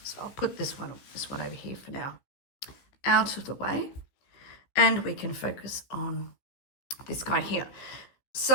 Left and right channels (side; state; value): right; late; 15 ms